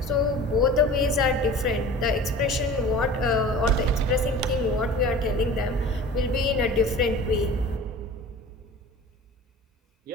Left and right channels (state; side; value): normal; both; correlation 0.41